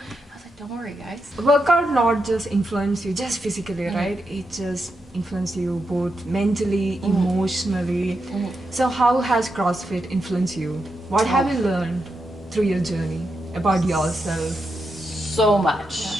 was like, don't worry, guys. Workout not just influence you just physically, right? It just influence you both mentally, emotionally. So how has CrossFit influenced you? What have you learned through your journey about yourself? So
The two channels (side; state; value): both; normal; correlation 0.85